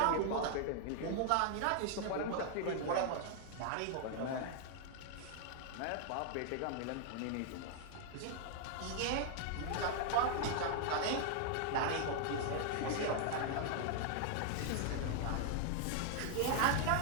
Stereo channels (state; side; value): different; both; correlation 0.00